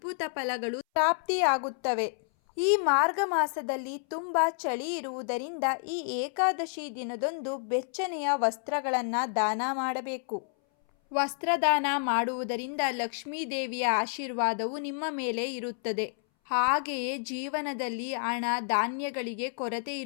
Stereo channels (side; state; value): right; silent; 58 dB below the other